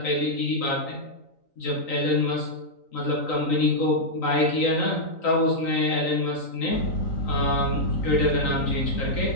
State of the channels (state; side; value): late; right; 3.9 ms